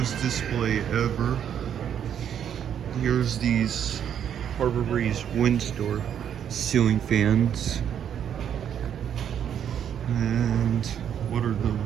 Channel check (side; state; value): left; quieter; 9.0 dB